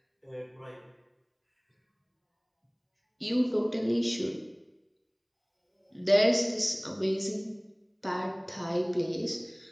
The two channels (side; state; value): both; identical; correlation 1.00